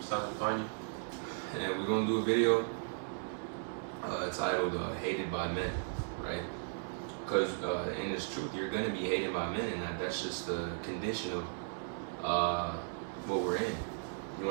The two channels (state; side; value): silent; left; 54 dB below the other